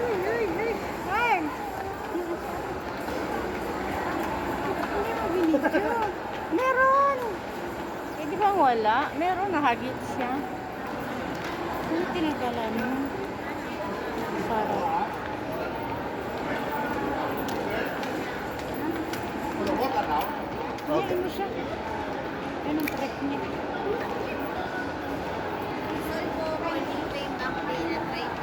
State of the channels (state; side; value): identical; both; correlation 1.00